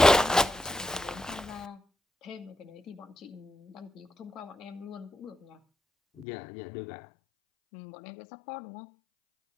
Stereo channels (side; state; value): right; drops out; at 6.2 s